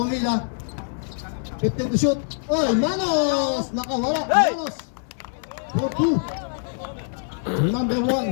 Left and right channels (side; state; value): right; silent; digital silence